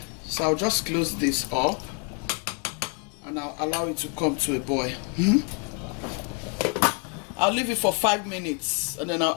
so I'll just close this up and I'll allow it to come to a boil. I'll leave it for 5 minutes and then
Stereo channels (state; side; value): quieter; right; 35.6 dB